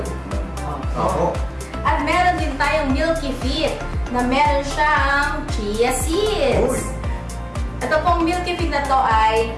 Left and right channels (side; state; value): both; identical; correlation 1.00